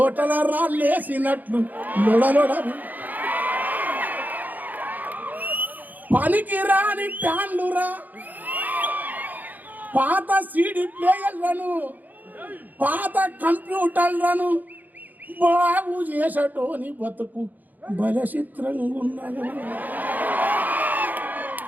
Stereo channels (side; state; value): left; late; 0.083 ms